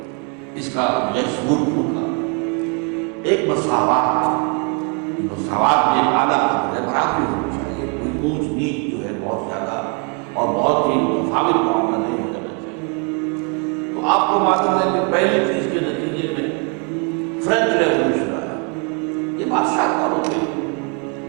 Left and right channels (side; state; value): left; quieter; 36.7 dB